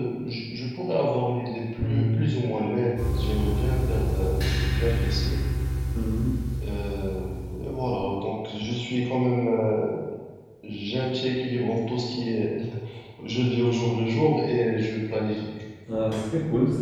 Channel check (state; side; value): identical; both; correlation 1.00